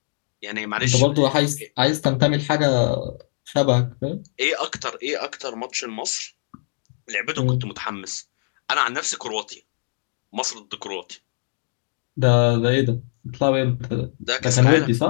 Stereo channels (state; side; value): silent; right; digital silence